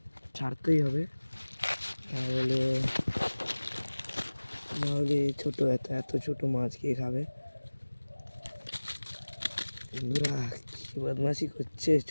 ছাড়তেই হবে, নাহলে ছোটো এত ছোটো মাছ কে খাবে। বন্ধুরা কি বদমাশি করছে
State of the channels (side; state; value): both; inverted; correlation -1.00